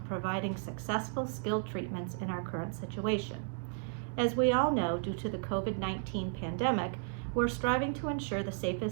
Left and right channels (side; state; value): left; silent; 55 dB below the other